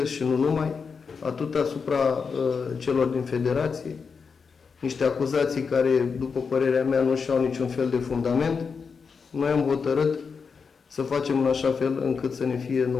și nu numai, atât asupra celor din federație, niște acuzații care, după părerea mea, nu și-au niciun fel de fundament. Noi am hotărât să facem în așa fel încât să ne fie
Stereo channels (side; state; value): right; quieter; 5.5 dB